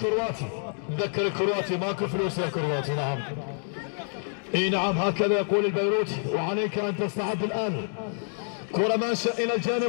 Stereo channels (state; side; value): silent; right; digital silence